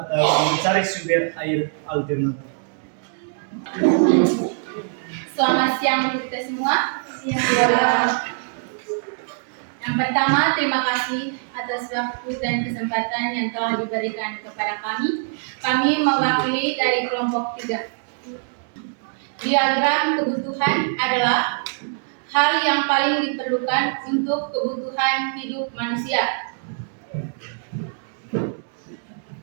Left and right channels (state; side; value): silent; left; 63 dB below the other